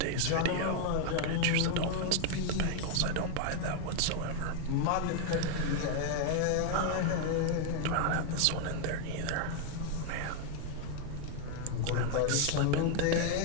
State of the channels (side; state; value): both; different; correlation 0.01